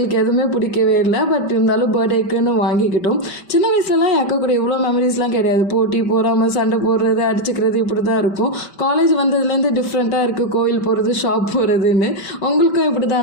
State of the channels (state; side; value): late; right; 5.1 ms